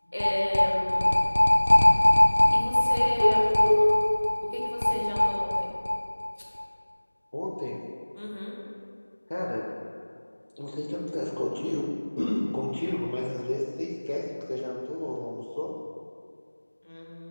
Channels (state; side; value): inverted; both; correlation -1.00